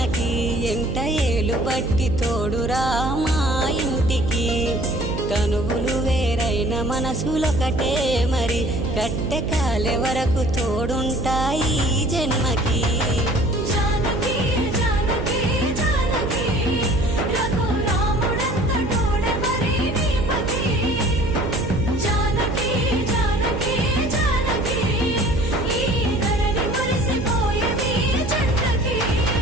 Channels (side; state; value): right; noise; hum, 4 dB below the sound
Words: ఎంట ఏలు బట్టి తోడురా మా ఇంటికి తనువులు వేరైన మనసులొకటే మరి కట్టె కాలే వరకు తోడుంటాయి జన్మకి